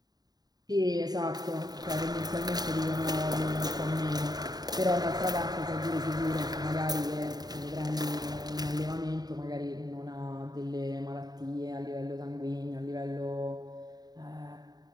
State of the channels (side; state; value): left; late; 0.19 ms